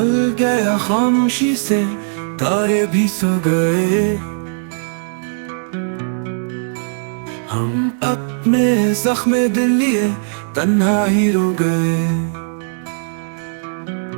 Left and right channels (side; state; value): left; silent; digital silence